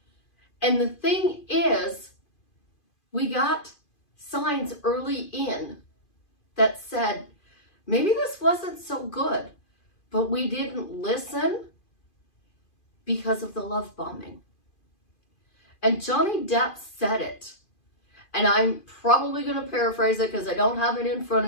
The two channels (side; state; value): right; late; 2.5 ms